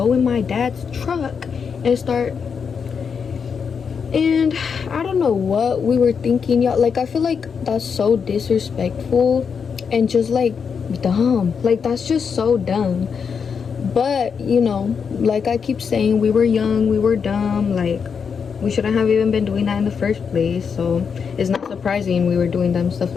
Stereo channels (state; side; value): quieter; right; 6.3 dB